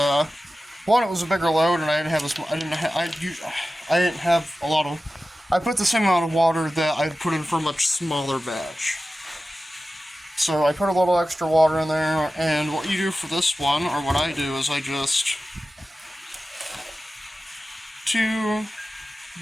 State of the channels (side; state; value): both; normal; correlation 0.94